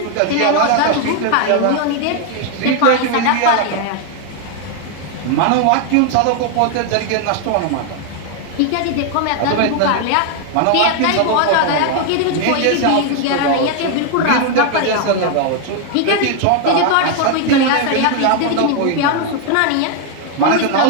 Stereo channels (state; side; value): different; both; correlation 0.00